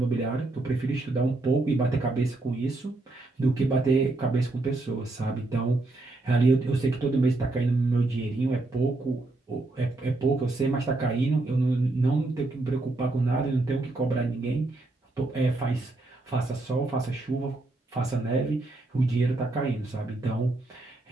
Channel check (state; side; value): quieter; left; 3.0 dB